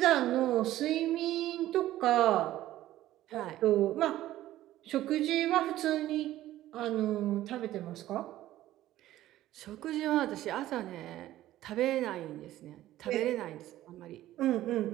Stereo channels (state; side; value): quieter; left; 14.4 dB